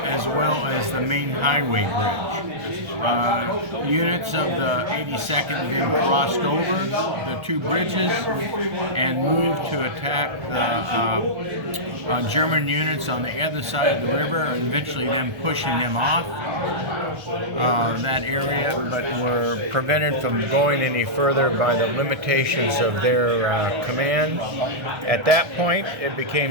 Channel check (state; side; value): late; left; 1.3 ms